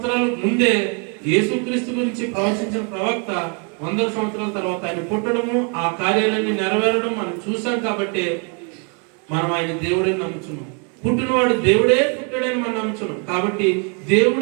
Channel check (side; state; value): left; quieter; 37.2 dB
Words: ముందే యేసుక్రీస్తు గురించి ప్రవచించిన ప్రవక్త 100 సంవత్సరాల తర్వాత ఆయన పుట్టడము, ఆ కార్యాలన్నీ నెరవేరడం మనం చూసాం. కాబట్టి మనం ఆయన దేవుడే నమ్ముచున్నాం. పుట్టినవాడు దేవుడే పుట్టాడని మనం నమ్ముచున్నాం. కాబట్టి